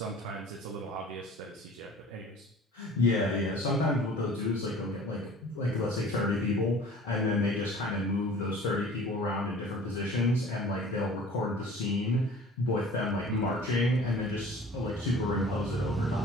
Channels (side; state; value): both; normal; correlation 0.45